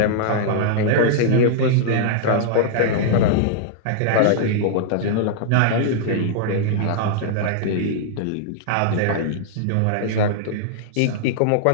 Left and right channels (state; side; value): different; both; correlation -0.01